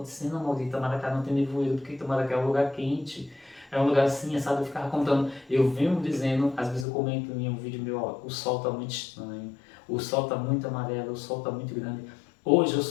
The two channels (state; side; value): drops out; right; at 6.9 s